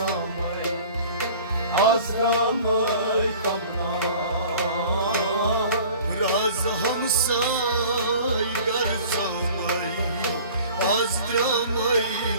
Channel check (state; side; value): inverted; both; correlation -0.46